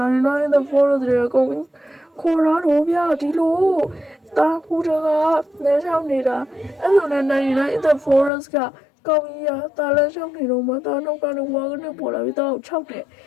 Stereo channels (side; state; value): right; drops out; at 8.3 s